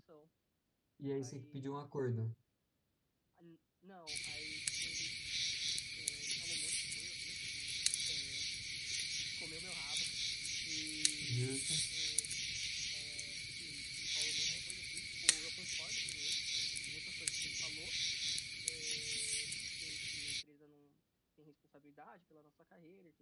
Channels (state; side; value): identical; both; correlation 1.00